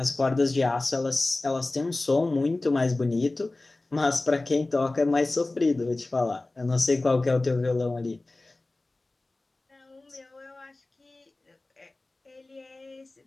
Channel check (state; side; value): quieter; right; 3.0 dB